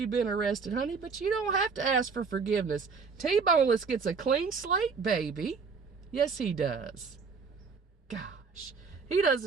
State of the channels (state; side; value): quieter; left; 5.1 dB